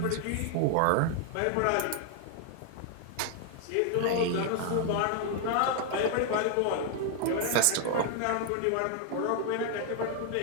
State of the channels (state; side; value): different; both; correlation 0.00